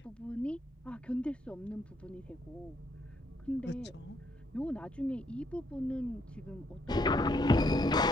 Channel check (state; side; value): normal; both; correlation 0.71